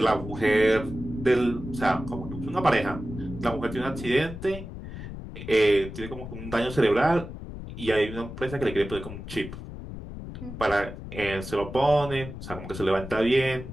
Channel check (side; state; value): left; noise; rumble, 10 dB below the sound